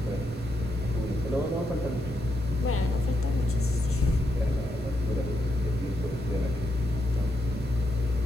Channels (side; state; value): both; normal; correlation 0.82